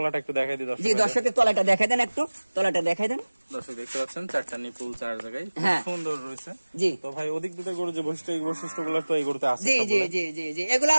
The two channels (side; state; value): both; inverted; correlation -1.00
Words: একটু দেখাই দিই দর্শক। জি দর্শকের তলাটা দেখাই দেন, একটু তলাটা দেখাই দেন। দর্শক দেখতে পাচ্ছেন চারটা নিপুল চার জায়গায় সুন্দর রয়েছে। জি, তো ভাই অধিক দুধের গরু যে বৈশিষ্ট্য, এই বৈশিষ্ট্যগুলো তো এই গরুতে আছে। জি জি জি জি জি, এগুলো